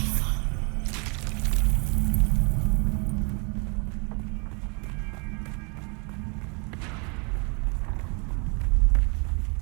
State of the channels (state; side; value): quieter; left; 34.7 dB